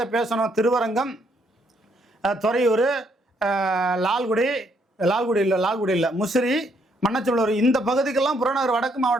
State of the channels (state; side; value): normal; both; correlation 0.71